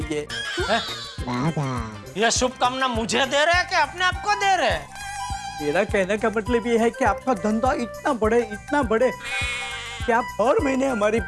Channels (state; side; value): identical; both; correlation 1.00